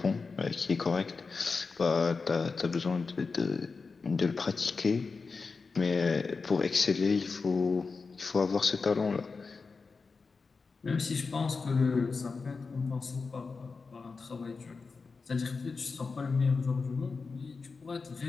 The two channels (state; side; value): quieter; right; 4.5 dB